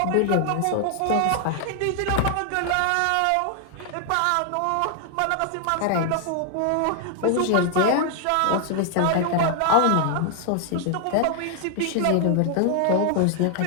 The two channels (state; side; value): different; both; correlation 0.00